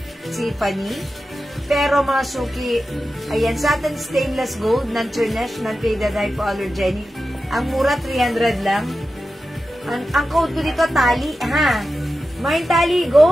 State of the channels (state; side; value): normal; both; correlation 0.92